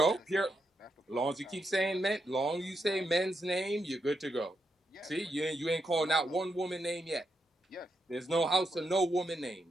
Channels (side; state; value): both; normal; correlation 0.82